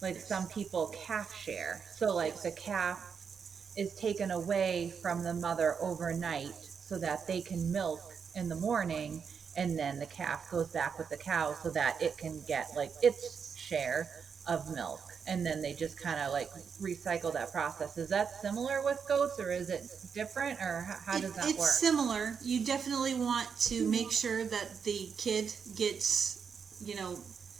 like some people calf share. So like the calf is taken away from the mother overnight so that they can milk in the morning, and then the calf goes back with the cow so that it can get like its share of milk, and then they just kind of like recycle that process. Is that similar with goats, or is it different, or how does that work? It's similar. You definitely want to make sure that the kid gets,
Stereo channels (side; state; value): left; quieter; 6.4 dB